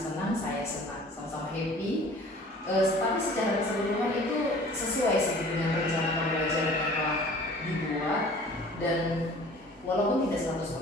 saya senang, sama-sama happy. Tapi secara keseluruhan itu sesuai sih dengan rencana pembelajaran yang telah dibuat, dan walaupun tidak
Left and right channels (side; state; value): both; normal; correlation 0.47